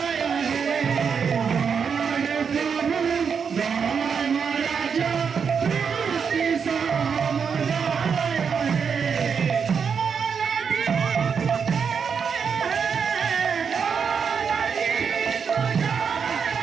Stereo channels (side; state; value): left; quieter; 6.4 dB